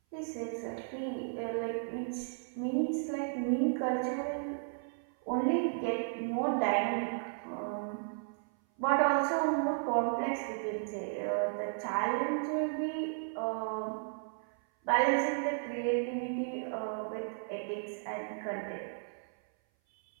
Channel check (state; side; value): silent; left; 55 dB below the other